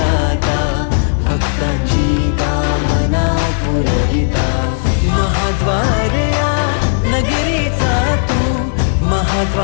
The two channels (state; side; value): silent; right; 70 dB below the other